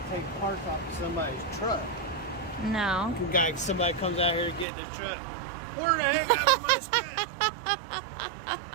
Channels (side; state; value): left; drops out; at 4.7 s